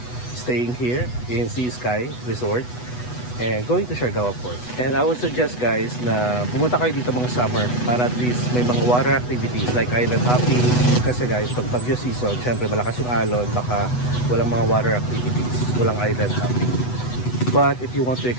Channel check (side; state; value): right; late; 8.1 ms